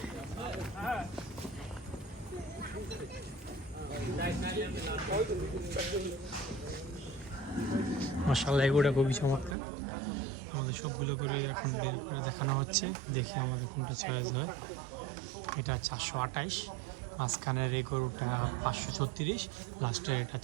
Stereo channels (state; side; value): drops out; left; at 9.6 s